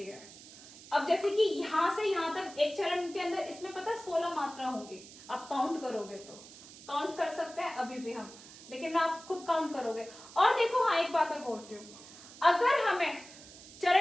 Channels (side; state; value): right; noise; hiss, 18 dB below the sound